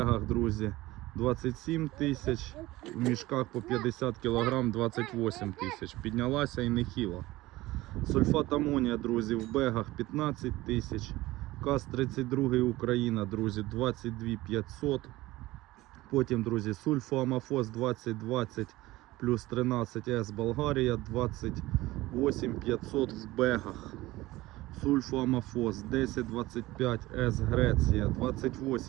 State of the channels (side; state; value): left; quieter; 18.5 dB